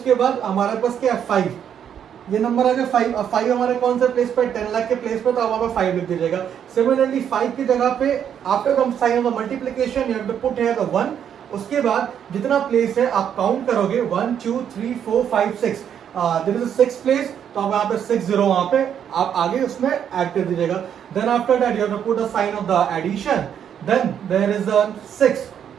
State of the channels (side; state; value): left; quieter; 8.8 dB